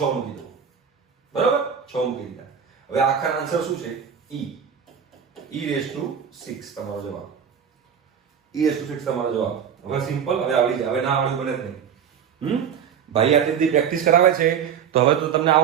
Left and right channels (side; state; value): left; quieter; 7.8 dB